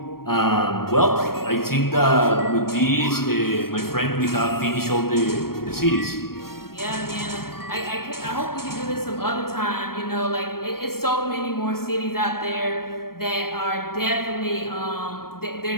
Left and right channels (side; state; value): right; late; 0.94 ms